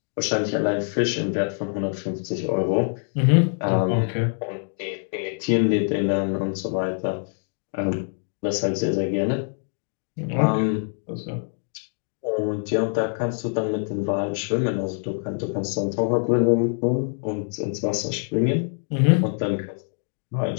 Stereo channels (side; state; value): right; silent; digital silence